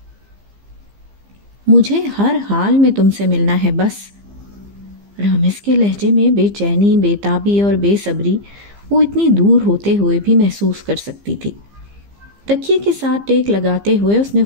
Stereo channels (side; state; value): left; late; 15 ms